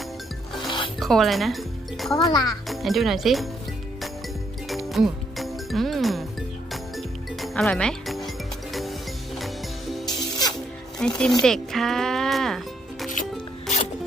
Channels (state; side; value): normal; both; correlation 0.74